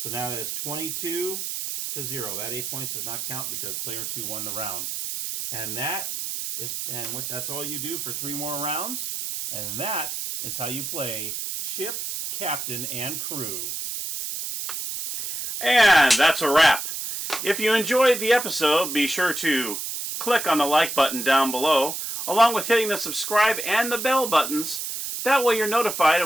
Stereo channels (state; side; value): noise; right; hiss, 5 dB below the sound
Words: now that is 22 to 0. That 8 points does not count because player 2 won the round. And that's all you do for 3 more rounds. And that is how you play ship, captain, and crew. And that's a wrap. If you enjoyed the episode, be sure to click on the like button down below, along with hitting the subscribe and the bell buttons. That way you're notified